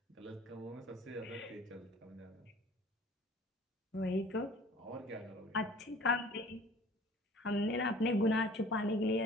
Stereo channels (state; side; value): normal; both; correlation 0.48